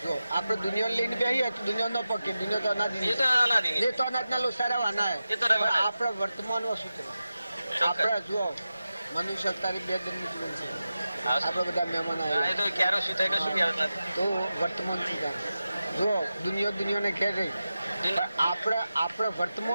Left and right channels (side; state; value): both; inverted; correlation -0.93